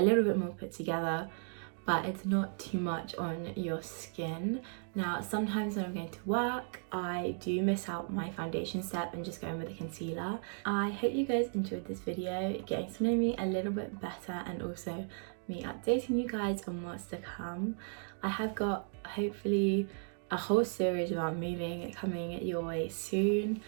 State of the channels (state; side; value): silent; left; 54 dB below the other